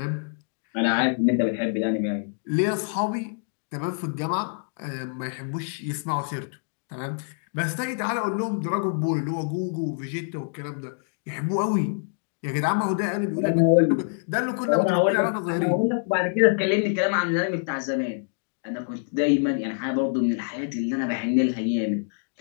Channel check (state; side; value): silent; right; digital silence